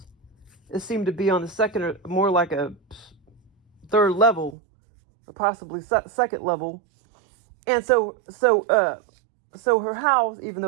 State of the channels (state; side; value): drops out; left; at 4.5 s